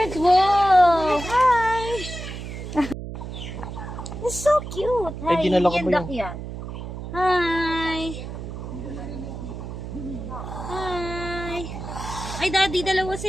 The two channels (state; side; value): noise; right; hum, 8 dB below the sound